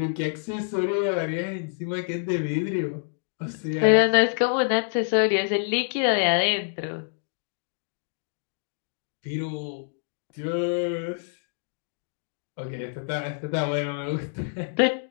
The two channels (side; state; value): right; silent; digital silence